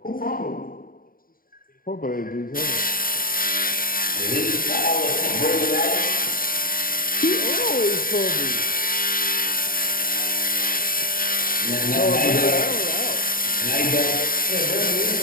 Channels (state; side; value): late; right; 0.41 ms